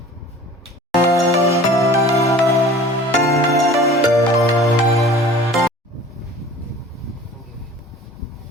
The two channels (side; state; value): both; normal; correlation 0.45